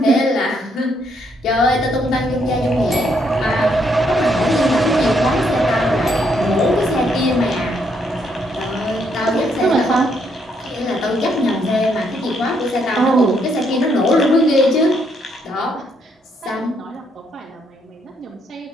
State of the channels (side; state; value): both; normal; correlation 0.73